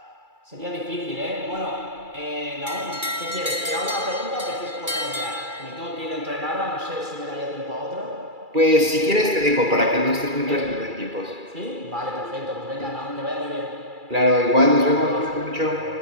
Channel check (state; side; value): late; left; 2.3 ms